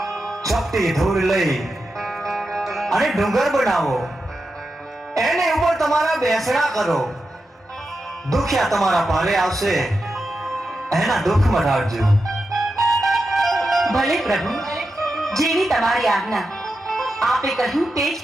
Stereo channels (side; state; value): both; normal; correlation 0.89